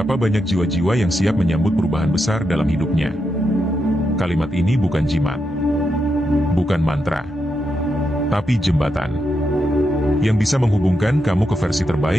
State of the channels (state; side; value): normal; both; correlation 0.84